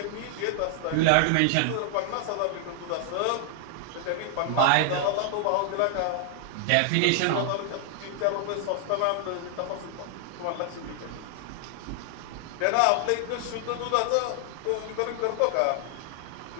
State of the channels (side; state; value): both; different; correlation 0.00